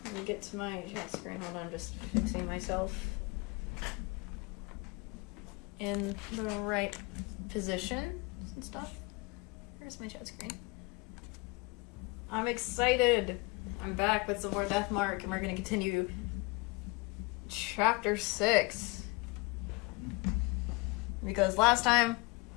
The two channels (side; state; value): right; quieter; 26.0 dB